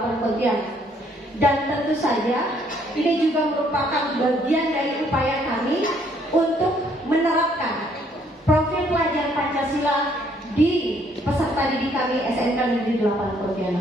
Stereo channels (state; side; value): normal; both; correlation 0.66